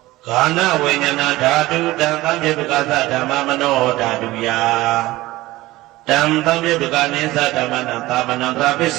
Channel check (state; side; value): quieter; left; 18.2 dB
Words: ခန္ဓာဝိညာဏဓာတုတံသံယုတ်ကသဓမ္မမနောဓာတုယတံသံယုတ်ကနေသဓမ္မနံသာမနန္တရပစ္စ